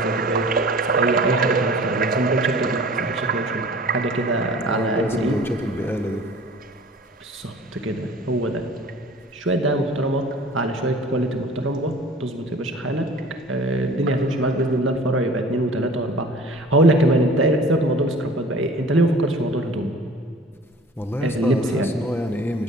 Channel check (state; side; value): normal; both; correlation 0.45